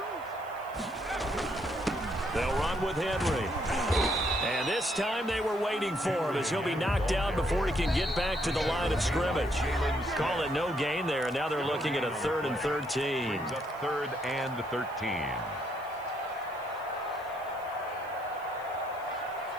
They'll run with Henry. And this time they were waiting for him as he'll be knocked down before he can get back to the line of scrimmage. Call it no gain there, and now they're looking at a 3rd and 13. Brings up 3rd and 13.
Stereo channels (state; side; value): noise; left; hiss, 25 dB below the sound